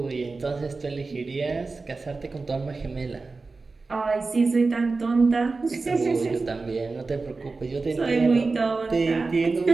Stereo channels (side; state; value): left; quieter; 3.9 dB